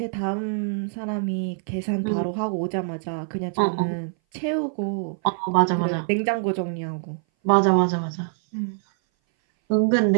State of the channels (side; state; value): left; silent; 59 dB below the other